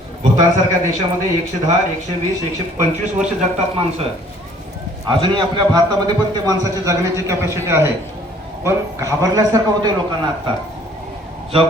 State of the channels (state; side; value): normal; both; correlation 0.57